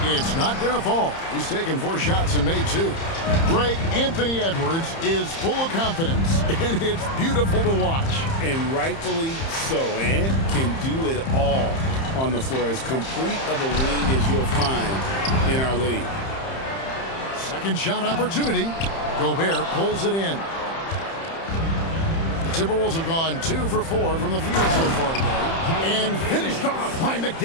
It's not going to fall. He's taken 4 shots and made 2. Greg, Anthony Edwards is full of confidence, and it's beautiful to watch. And rightfully so. Ant can do it all on the floor. As complete of a wing as you'll find in our league. Second shot opportunity. Gobert pulls it in. The Timberwolves have gone 2 for 4 from the field so far today. And finished off by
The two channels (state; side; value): late; right; 30 ms